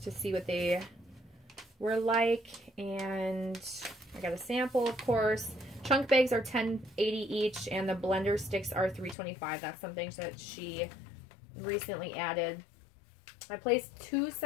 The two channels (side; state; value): right; drops out; at 9.2 s